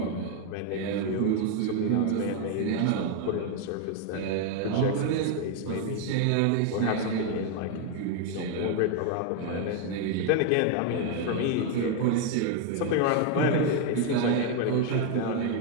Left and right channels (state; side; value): different; both; correlation 0.01